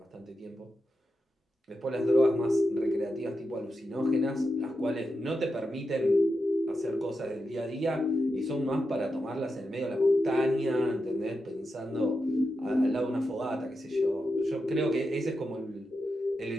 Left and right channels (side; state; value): both; normal; correlation 0.88